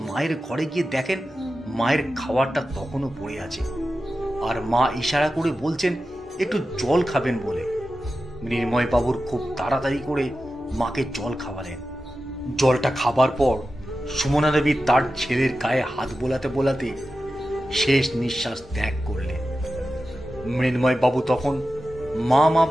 মায়ের ঘরে গিয়ে দেখেন মায়ের খাবারটা তখনও পড়ে আছে, আর মা ইশারা করে বলছেন একটু জল খাবেন বলে। মৃন্ময় বাবুর খুব তাড়াতাড়ি করে মাকে জল খাওয়ালেন। জলটা খাবার পর সুমনা দেবী তার ছেলের গায়ে হাত বোলাতে বোলাতে শেষ নিঃশ্বাস ত্যাগ করলেন। মৃন্ময় বাবু তখন মা মা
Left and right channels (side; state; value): both; normal; correlation 0.92